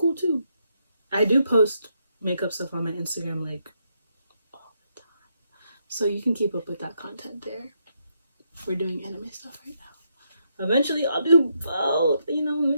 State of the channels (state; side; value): inverted; both; correlation -0.78